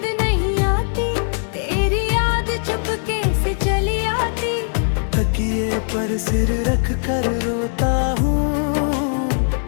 नहीं आती, तेरी याद चुपके से चली आती। तकिए पर सिर रख कर रोता हूँ,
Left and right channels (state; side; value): silent; right; digital silence